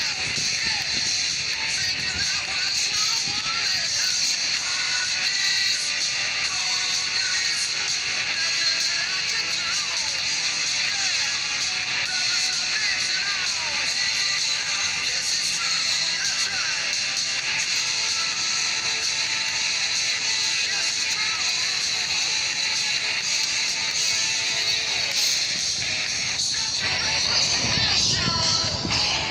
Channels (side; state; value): both; identical; correlation 1.00